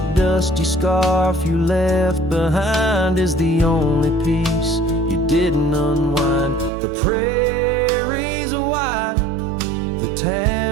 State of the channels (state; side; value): drops out; left; at 6.7 s